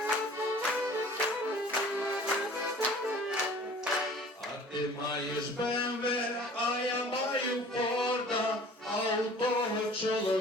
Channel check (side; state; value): both; normal; correlation 0.47